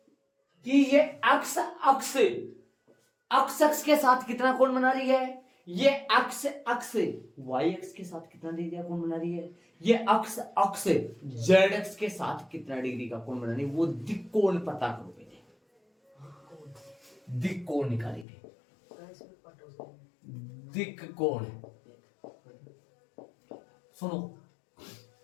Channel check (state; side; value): drops out; right; at 18.2 s